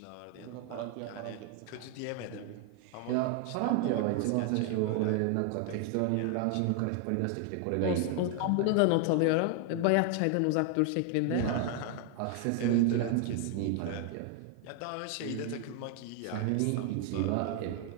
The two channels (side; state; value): both; different; correlation 0.00